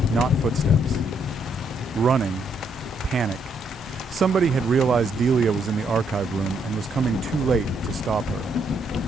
Not footsteps. Running. Panic. Somebody had realized Delia was in the archive room and was coming too late to stop her.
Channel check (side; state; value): both; normal; correlation 0.74